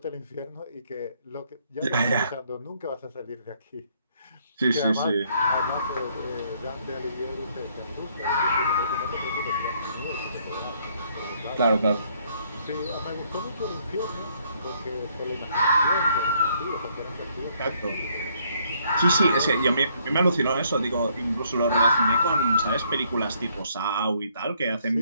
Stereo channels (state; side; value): inverted; both; correlation -0.67